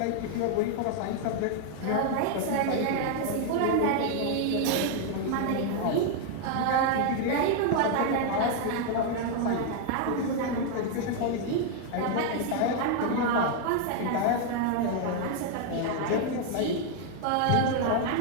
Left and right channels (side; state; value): both; different; correlation 0.00